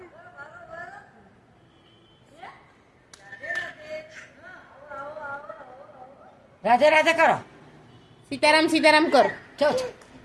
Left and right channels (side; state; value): both; identical; correlation 1.00